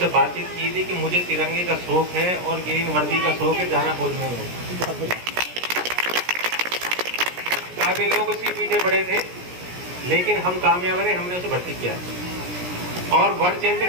बातचीत की थी कि मुझे तिरंगे का शौक है और ग्रीन वर्दी का शौक है, जाना खोजने में। काफी लोग उसके पीछे पड़े थे, लेकिन हम कामयाब रहे, हमने उसे भर्ती किया। और वर्ल्ड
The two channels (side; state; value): left; late; 17 ms